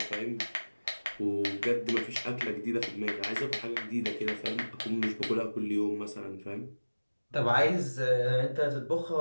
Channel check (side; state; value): both; inverted; correlation -1.00